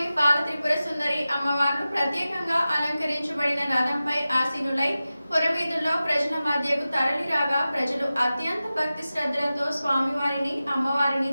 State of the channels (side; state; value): both; inverted; correlation -0.95